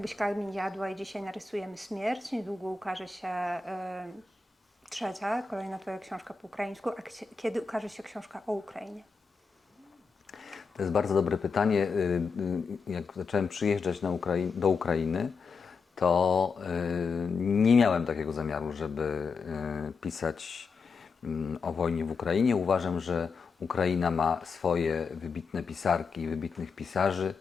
kamień jadła i dzisiaj narysujemy śmierć. Niedługo ukaże się trzecia, kolejna twoja książka po ukraińsku. A kiedy ukaże się książka o Ukrainie? To jest bardzo dobre pytanie. Jak zacząłem przyjeżdżać do Ukrainy, to nie miałem takiego zamiaru, żeby pisać o wojnie w Ukrainie. Uważam, że Ukraina ma swoje wybitne pisarki i wybitnych pisarzy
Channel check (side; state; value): right; quieter; 4.9 dB